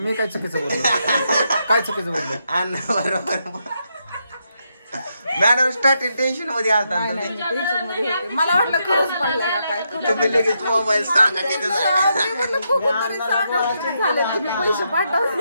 काय चुकीचं बोललो काय चुकीचं बोललो अण्णा बरोबर मॅडम स्टार्टिंग टेन्शन मध्ये आलता टेन्शन मध्ये होते. मला वाटलं खरंच पडलाय का काय तुम्ही लगेच मोबाईल सांगा तिथे जा. मी म्हणलं बघू तरी सांगा किती झाले तुम्ही पैसे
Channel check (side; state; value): both; inverted; correlation -0.81